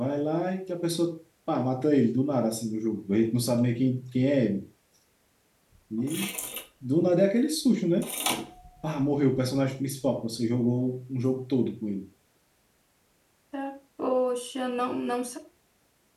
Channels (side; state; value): both; identical; correlation 1.00